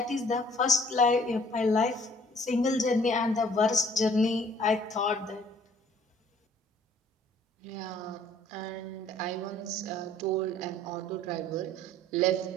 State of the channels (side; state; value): both; normal; correlation 0.57